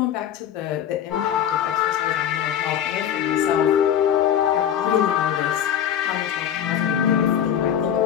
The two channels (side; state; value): right; quieter; 9.6 dB